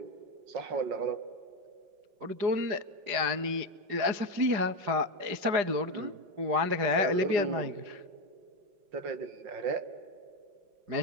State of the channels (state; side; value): late; left; 4.9 ms